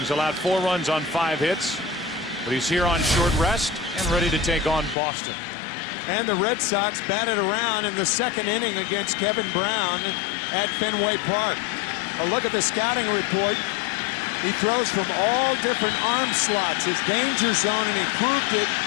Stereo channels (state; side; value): drops out; right; at 5.0 s